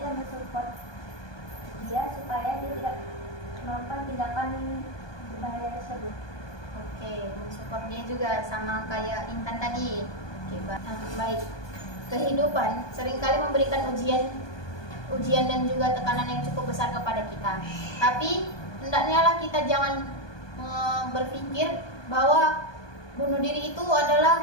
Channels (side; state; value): right; late; 1.2 ms